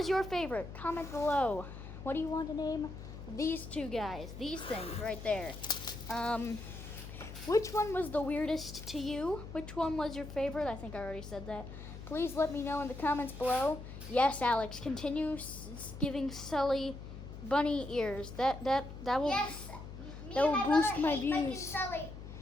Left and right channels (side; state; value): left; noise; hum, 11 dB below the sound